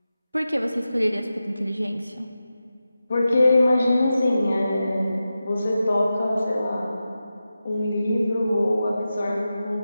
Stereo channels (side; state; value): both; inverted; correlation -0.92